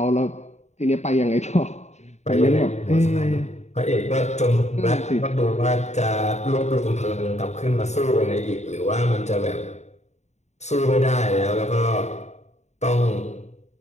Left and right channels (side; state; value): right; late; 0.33 ms